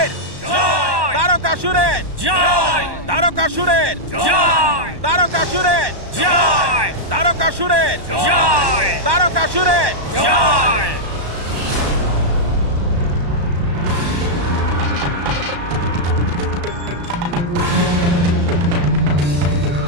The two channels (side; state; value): left; late; 1.1 ms